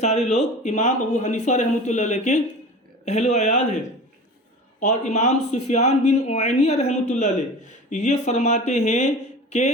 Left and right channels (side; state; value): both; normal; correlation 0.36